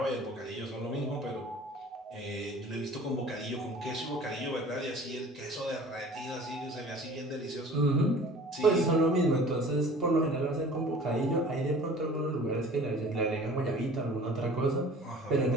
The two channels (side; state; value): both; normal; correlation 0.46